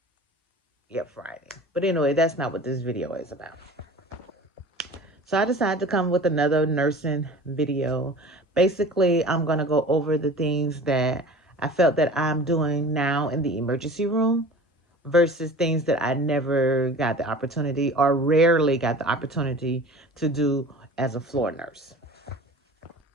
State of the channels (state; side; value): normal; both; correlation 0.40